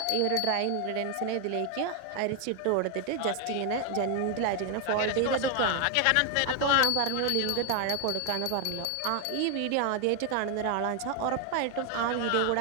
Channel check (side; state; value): both; different; correlation 0.01